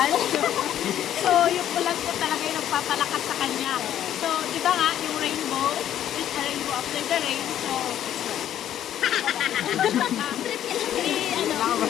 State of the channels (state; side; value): quieter; right; 11.1 dB